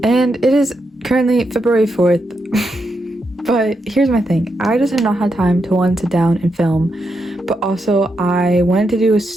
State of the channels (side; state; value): both; normal; correlation 0.83